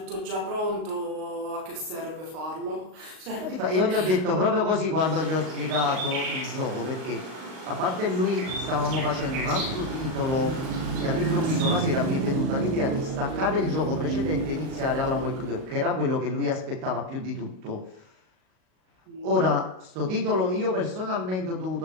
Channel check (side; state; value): left; late; 38 ms